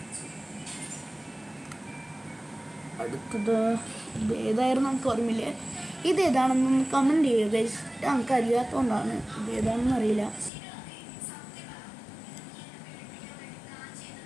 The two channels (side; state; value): right; drops out; at 10.5 s